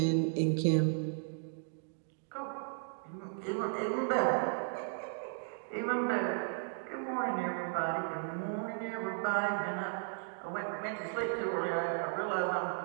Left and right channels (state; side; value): silent; left; digital silence